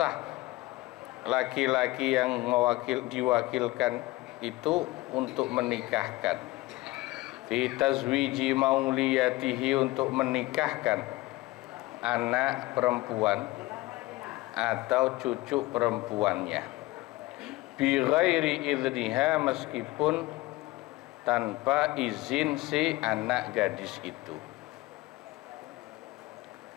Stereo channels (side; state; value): right; quieter; 19.8 dB